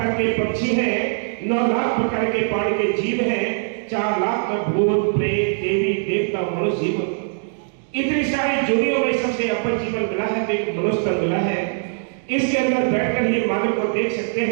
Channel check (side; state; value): left; silent; digital silence